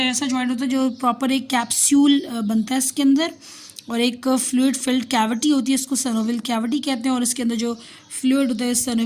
ऐसा जॉइंट होता है जो प्रॉपर एक कैप्सूल बनता है इसके अंदर, और एक फ्लूइड फिल्ड कैविटी होती है, इसको सैनोवियल कैविटी कहते हैं। और इसके अंदर जो फ्लूइड होता है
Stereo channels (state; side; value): identical; both; correlation 1.00